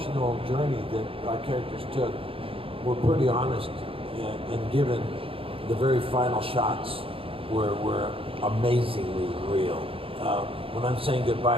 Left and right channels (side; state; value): left; late; 0.27 ms